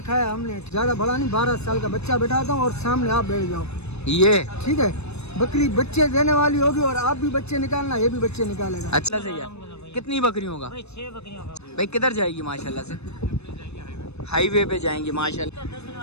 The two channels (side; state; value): right; late; 0.80 ms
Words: हमने, ज्यादा बड़ा नहीं, 12 साल का बच्चा बैठाता हूँ और सामने आप बैठ जाओ, ये ठीक है। बकरी बच्चे देने वाली होगी और आप भी बच्चे निकालना, ये भी बच्चे निकालेगा। अच्छा सही है। कितनी बकरियों का? 6 बकरियों का। भाई किधर जाएगी माशाल्लाह से? हाईवे पे जाएंगी